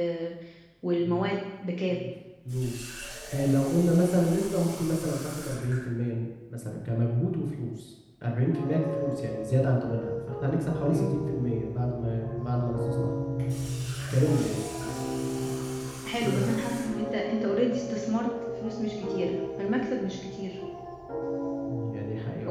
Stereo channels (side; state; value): both; identical; correlation 1.00